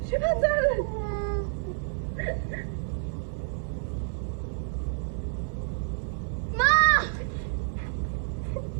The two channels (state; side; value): silent; left; digital silence